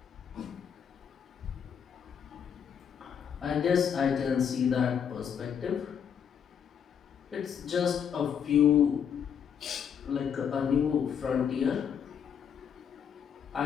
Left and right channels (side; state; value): right; quieter; 7.9 dB